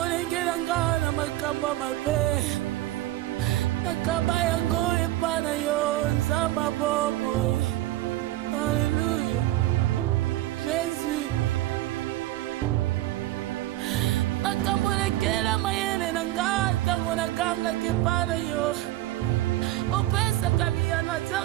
nanga na makambo mabe nakaba yango epana yo nzamba bomoi. Alléluia. Jésus. Makambo lekela mayele nanga tango nakanga kepana yo opesa kamiyana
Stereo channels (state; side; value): quieter; left; 16.1 dB